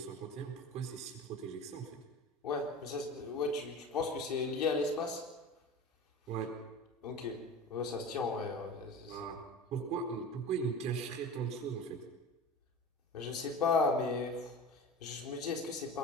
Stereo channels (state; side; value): normal; both; correlation 0.33